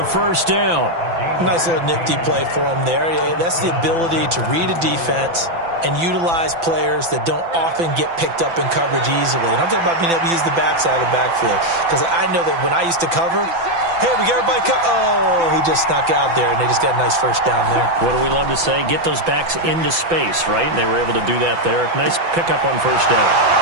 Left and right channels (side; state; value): left; late; 5.9 ms